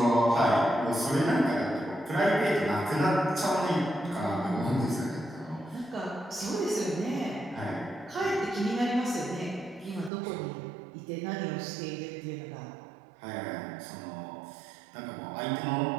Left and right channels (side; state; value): left; drops out; at 10.1 s